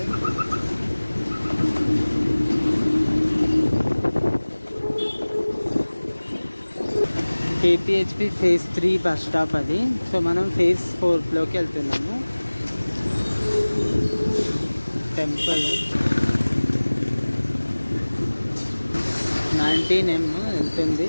KPHP phase 3 bus stop అది. సో మనం ఫేజ్ 4లోకి వెళ్తున్నాము. టెంపుల్ 19M వెళ్తుంది,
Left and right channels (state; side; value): inverted; both; correlation -1.00